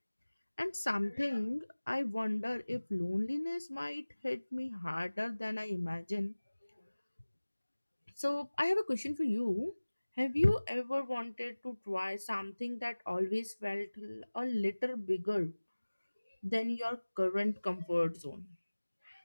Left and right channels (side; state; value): both; inverted; correlation -1.00